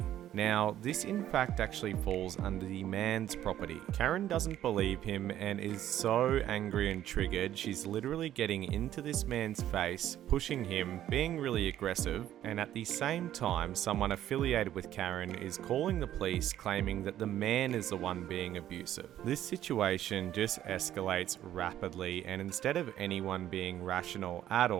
Now, this in fact actually falls under the man's property. Karen doesn't believe him and is so angry and triggered, she's literally getting into this man's face, pushing him, being really aggressive, and at the same time, someone affiliated with Karen is calling the police, claiming that the man is the one being abusive. This situation just escalates rapidly, and instead of anyone being rational at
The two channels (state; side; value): quieter; left; 12.0 dB